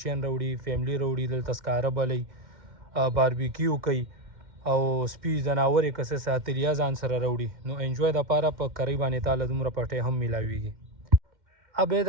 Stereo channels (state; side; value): late; left; 2.1 ms